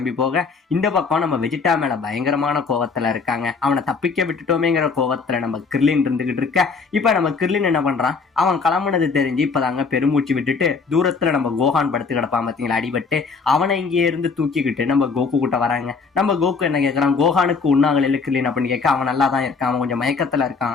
போக, இந்த பக்கம் நம்ம வெஜிடா மேல பயங்கரமான கோவத்துல இருக்காங்க. அவனை தப்பிக்க விட்டுட்டோமேங்கிற கோவத்துல நம்ம கிர்லின் இருந்துகிட்டு இருக்க. இப்ப நம்ம கிர்லின் என்ன பண்றான், அவன் கிளம்புனது தெரிஞ்சு இப்பதாங்க பெருமூச்சு விட்டுட்டு தூரத்துல நம்ம கோஹான் படுத்து கிடப்பான் பார்த்தீங்களா, அடிபட்டு. அவனை இங்கே இருந்து தூக்கிக்கிட்டு நம்ம கோகு கிட்ட வராங்க. நம்ம கோகு என்ன கேட்கறான், கோஹானுக்கு உண்ணாங்கல இல்ல கிர்லின் அப்படின்னு கேட்க, அவன் நல்லா தான் இருக்கான், அவன் கொஞ்சம் மயக்கத்துல இருக்கான்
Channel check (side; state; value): right; quieter; 4.9 dB